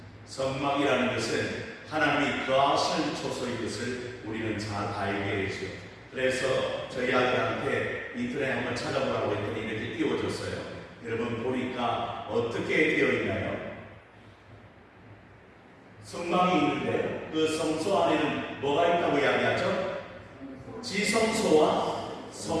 성막이라는 것은 하나님이 거하시는 초소인 것을 우리는 잘 알게 되죠. 그래서 저희 아들한테 인터넷에 한번 찾아보라고 했더니 이렇게 띄워줬어요. 여러분 보니까 어떻게 되어 있나요? 성막이 있는데 그 성소 안에는 뭐가 있다고 이야기하죠? 지성소와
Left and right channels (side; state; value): both; identical; correlation 1.00